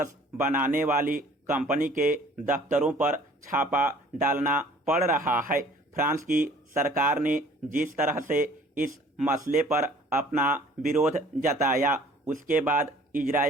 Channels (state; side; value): normal; both; correlation 0.53